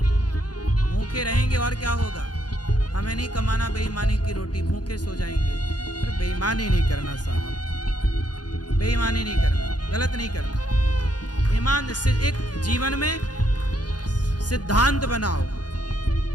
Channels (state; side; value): late; right; 0.69 ms